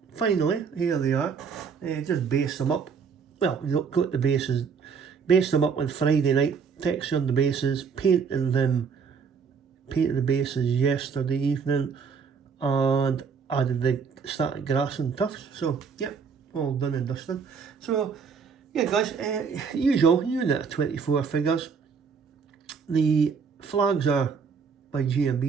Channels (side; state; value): left; quieter; 5.9 dB